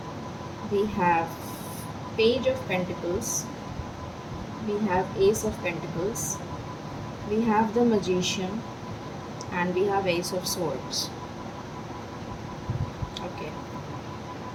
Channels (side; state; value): both; identical; correlation 1.00